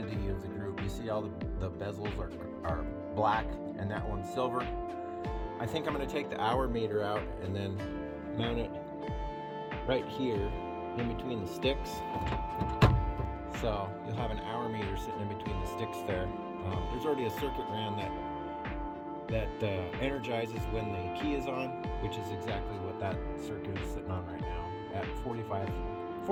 of the group. You see all the bezels are black and that one's silver. I think I'm going to take the hour meter out and then mount it right here in between the sticks. So you'll have an hour meter sitting in between the sticks there. There's already a circuit ran that energizes when the key is on, which is exactly what that circuit is sitting on right now at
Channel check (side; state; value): both; identical; correlation 1.00